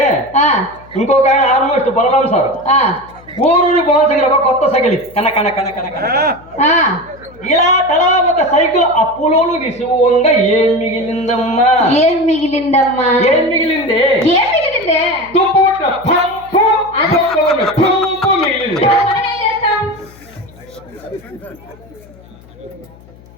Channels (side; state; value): left; noise; hum, 24 dB below the sound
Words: ఇంకొక ఆయన ఆల్మోస్ట్ బలరాం సార్ ఊరూరి పవన్ దగ్గర కొత్త సైకిల్ కన కన కన కన కన ఇలా తలా ఒక సైకిల్ అప్పులోలు విసువంగా ఏం మిగిలిందమ్మా? ఏం మిగిలిందమ్మా? ఏం మిగిలింది? ఏం మిగిలిందే? తుప్పు పంపు పంపు మిగిలింది.